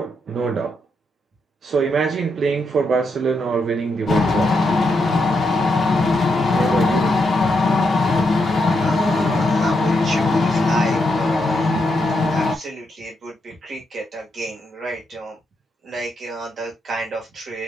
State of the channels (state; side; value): normal; both; correlation 0.81